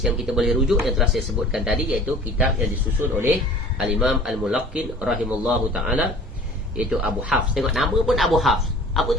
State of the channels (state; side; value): normal; both; correlation 0.46